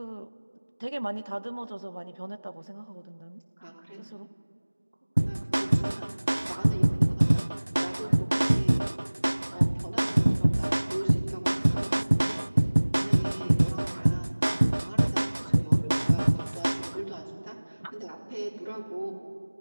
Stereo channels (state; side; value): inverted; both; correlation -1.00